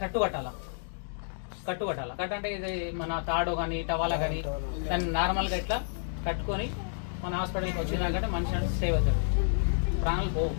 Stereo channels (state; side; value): silent; right; digital silence